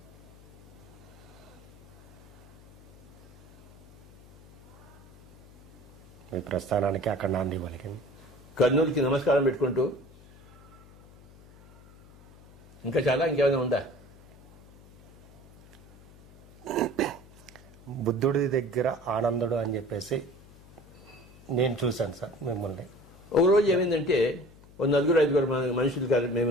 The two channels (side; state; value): left; noise; hum, 22 dB below the sound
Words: మీ ప్రస్థానానికి అక్కడ నాంది పలికింది. కర్నూలుకి నమస్కారం పెట్టుకుంటూ ఇంకా చాలా ఇంకేమైనా ఉందా? బుద్ధుడి దగ్గర ఆనందుడు అని చెప్పేసి నేను చూశాను సార్ మిమ్మల్ని. ఒక రోజు ఏమైందంటే ఓ 4-5 మనుషులు